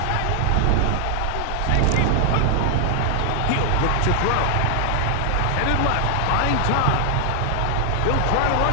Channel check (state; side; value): different; both; correlation 0.00